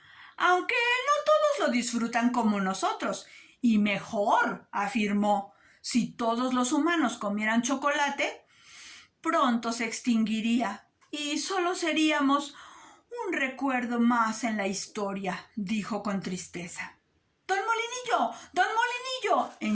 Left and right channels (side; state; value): both; identical; correlation 1.00